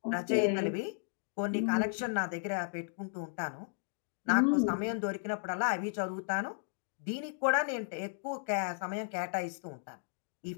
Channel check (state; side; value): silent; right; digital silence